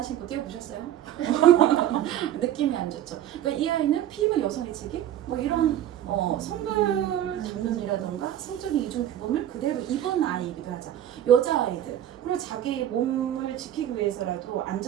신고 뛰어보셨어요? 느낌이 안 좋죠. 그러니까 이 아이는 피부 여성의 책임? 뭐 이런 성별 담론이라던가 성적인 이중 규범을 그대로 입은 아이이기도 하죠. 여자아이들. 그리고 자기 몸을 지키기 위해서라도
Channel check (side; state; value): left; quieter; 11.6 dB